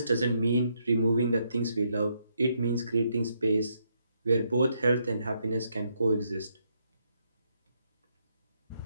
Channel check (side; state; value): both; inverted; correlation -0.76